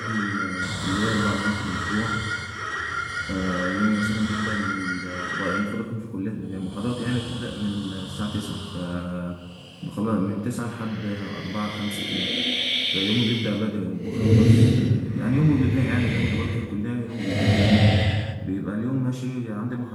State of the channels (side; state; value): both; identical; correlation 1.00